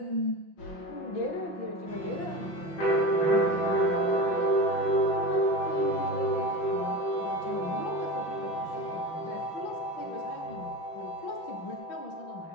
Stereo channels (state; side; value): late; right; 5.8 ms